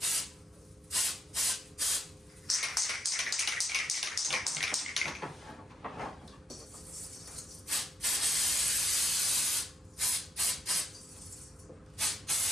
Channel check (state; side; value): normal; both; correlation 0.80